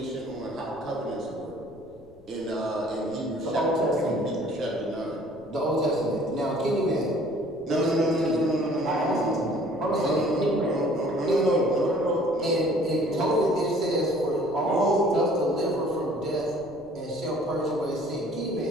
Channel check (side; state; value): left; noise; rumble, 25 dB below the sound